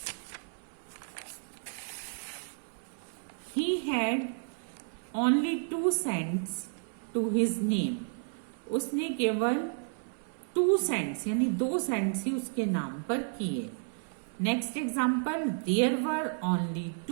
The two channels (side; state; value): left; silent; 56 dB below the other